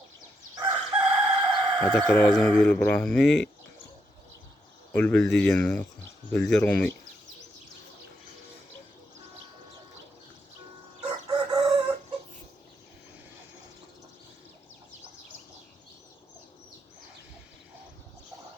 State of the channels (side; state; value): both; normal; correlation 0.80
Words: هداك راه زعما ديال البراهمي والبلدي ديالنا بلدي رومي.